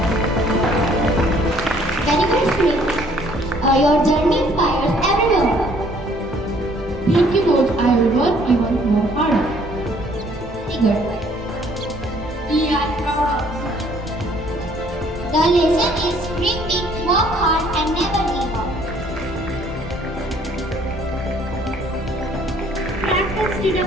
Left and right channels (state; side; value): normal; both; correlation 0.61